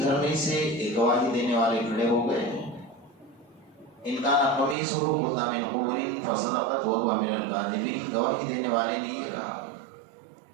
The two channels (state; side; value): drops out; left; at 4.8 s